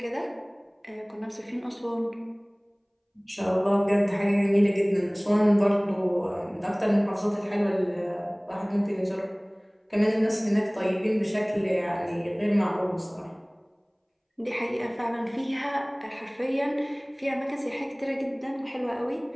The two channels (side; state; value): both; identical; correlation 1.00